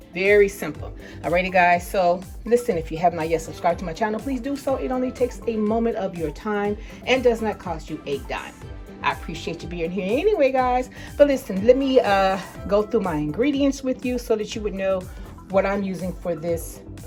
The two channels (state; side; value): identical; both; correlation 1.00